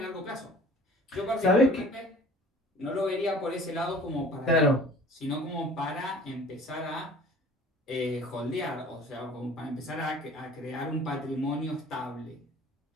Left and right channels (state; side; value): normal; both; correlation 0.48